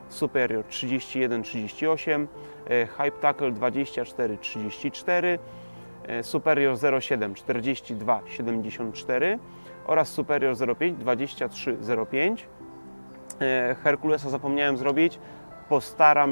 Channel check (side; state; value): both; inverted; correlation -1.00